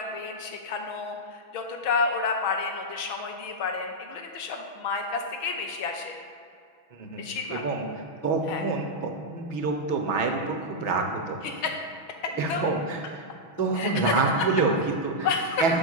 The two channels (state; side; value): late; right; 6.2 ms